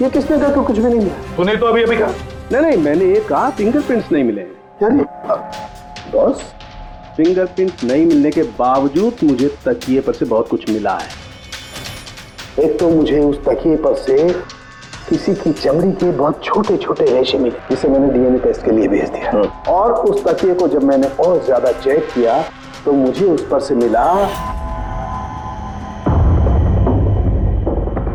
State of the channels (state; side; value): identical; both; correlation 1.00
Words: ये किसने कहा कि कुछ भी नहीं मिला? तूने तो अभी कहा। नहीं, मैंने ये कहा फिंगरप्रिंट्स नहीं मिले। यानी बॉस, फिंगरप्रिंट नहीं मिलने के बावजूद मुझे तकिए पर से बहुत कुछ मिला है। एक तो मुझे उस तकिए पर से किसी की चमड़ी के बहुत छोटे छोटे रेशे मिले, जिसे मैंने डीएनए टेस्ट के लिए भेज दिया। और उस तकिए को जब मैंने और ज्यादा चेक किया तो मुझे उस पर से मिला